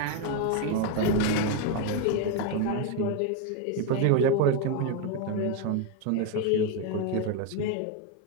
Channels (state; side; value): different; both; correlation 0.01